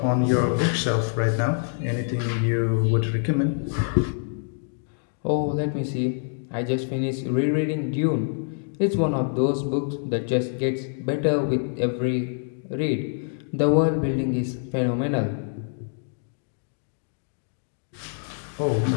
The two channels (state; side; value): silent; right; 61 dB below the other